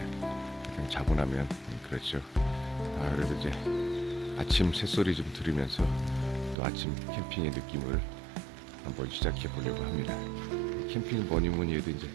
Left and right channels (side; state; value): left; drops out; at 6.6 s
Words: 자고 나면 그렇죠. 그래도 이제 아침 새소리 좀 들으면서 또 아침 캠핑의 느낌을 한번 시작해 보려고 합니다. 캠핑은 뭐니 해도 이제